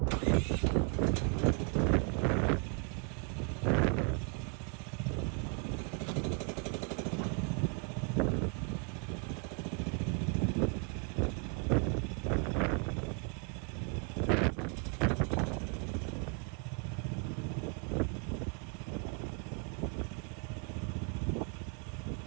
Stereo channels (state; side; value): quieter; left; 36.0 dB